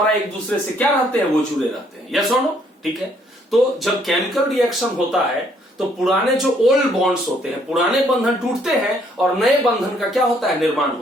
एक दूसरे से क्या रहते हैं, वो जुड़े रहते हैं। यस और नो? ठीक है। तो जब केमिकल रिएक्शन होता है तो पुराने जो ओल्ड बॉन्ड्स होते हैं, पुराने बंधन टूटते हैं और नए बंधन का क्या होता है, निर्माण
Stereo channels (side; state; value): both; normal; correlation 0.66